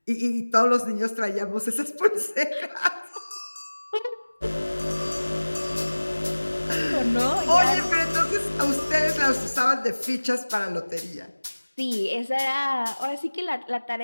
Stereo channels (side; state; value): both; inverted; correlation -1.00